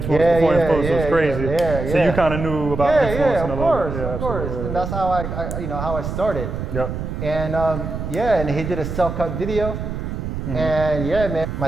before influencer was crazy. Yeah. So you kind of knew about influencing a little bit. Of course. And that's how how I started. Yep. And and he did a self-cut video. And man, my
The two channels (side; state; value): right; noise; rumble, 5 dB below the sound